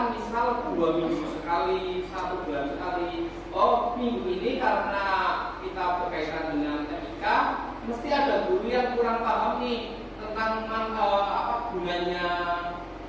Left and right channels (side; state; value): both; identical; correlation 1.00